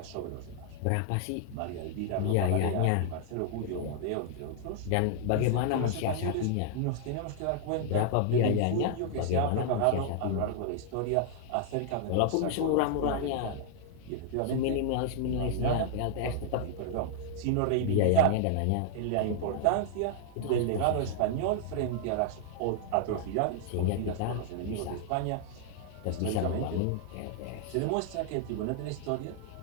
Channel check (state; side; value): different; both; correlation -0.01